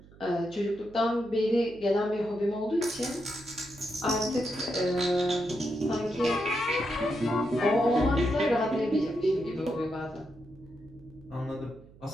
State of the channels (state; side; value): noise; right; hum, 23 dB below the sound